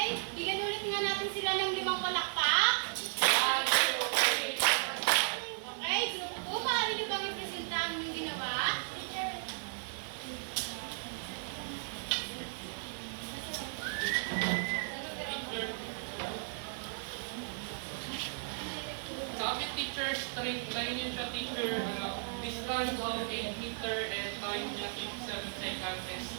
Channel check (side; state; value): left; silent; 54 dB below the other